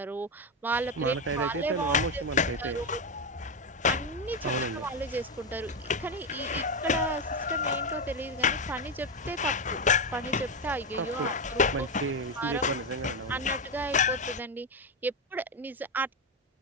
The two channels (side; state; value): both; normal; correlation 0.10